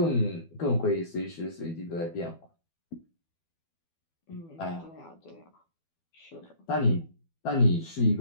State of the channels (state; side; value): late; right; 12 ms